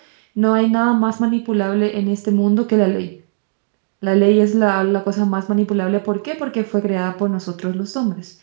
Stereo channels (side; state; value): left; silent; digital silence